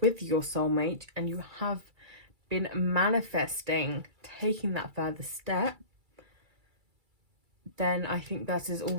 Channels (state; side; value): late; left; 2.3 ms